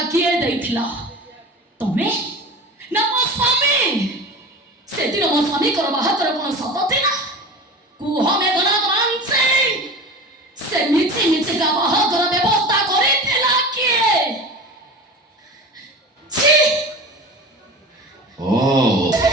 କିଏ ଦେଇଥିଲା ତମେ ନା ମୋ ସ୍ୱାମୀ ସେଦିନ ମୋ ସ୍ୱାମୀଙ୍କର ବାହାଘର କ'ଣ ସତ ଥିଲା କୁହ ମେଘନାଥ ମାନସିଂ ସେ ମିଛି ମିଛିକା ବାହାଘର ବ୍ୟବସ୍ଥା କରିଥିଲା କିଏ ଛି ओ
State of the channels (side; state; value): both; normal; correlation 0.34